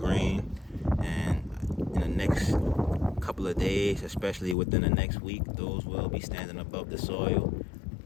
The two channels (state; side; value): drops out; right; at 4.5 s